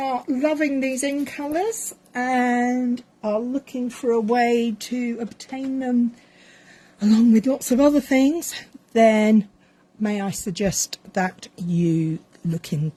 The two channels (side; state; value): both; identical; correlation 1.00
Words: loving these in colours and are looking for a way to obtain them along with lots of other things, then may I suggest that you look